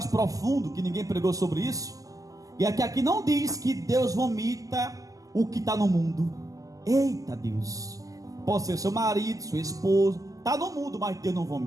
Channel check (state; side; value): late; left; 0.17 ms